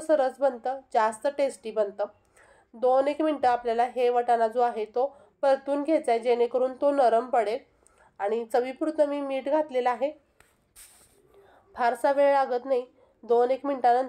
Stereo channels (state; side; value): identical; both; correlation 1.00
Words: बनतं, जास्त टेस्टी बनतं। 2-1 मिनिटं आपल्याला हे वाटाणा जो आहे तो परतून घ्यायचा आहे, जेणेकरून तो नरम पडेल। आणि चवीपुरतं मी मीठ घातलेलं आहे। फारसा वेळ लागत नाही, 2-1